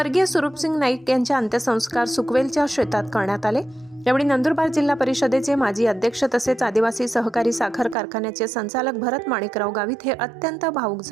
सुरूपसिंग नाईक यांच्या अंत्यसंस्कार सुकवेलच्या शेतात करण्यात आले। यावेळी नंदुरबार जिल्हा परिषदेचे माजी अध्यक्ष तसेच आदिवासी सहकारी साखर कारखान्याचे संचालक भरत माणिकराव गावित हे अत्यंत भावुक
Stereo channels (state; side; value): drops out; left; at 8.0 s